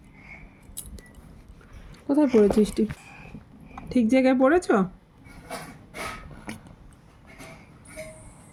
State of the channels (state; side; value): identical; both; correlation 1.00